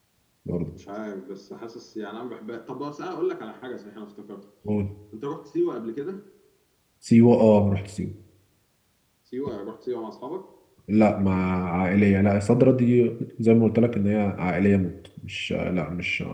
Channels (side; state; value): both; identical; correlation 1.00